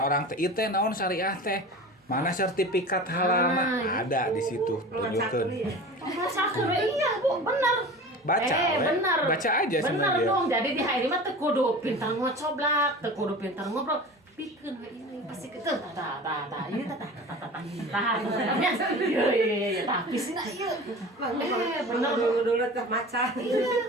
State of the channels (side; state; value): both; normal; correlation 0.36